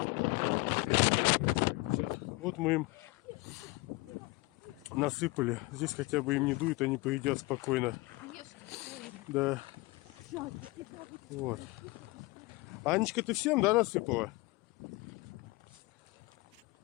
Вот мы им насыпали. Здесь хотя бы им не дует, они поедят спокойно. Да. Вот. Анечка, ты всем, да, насыпала?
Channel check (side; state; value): right; quieter; 23.2 dB